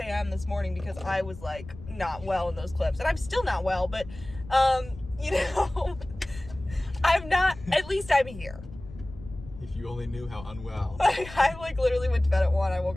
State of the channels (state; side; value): noise; left; rumble, 16 dB below the sound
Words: this morning because I was like not well in those clips. And I'm still not well, but you know, I'm not, at least I'm here. If you only knew how unwell. I like literally went to bed at 1. I woke